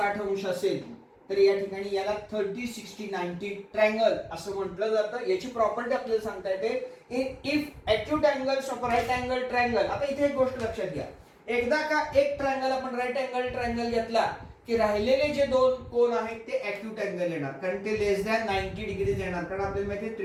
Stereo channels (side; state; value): both; identical; correlation 1.00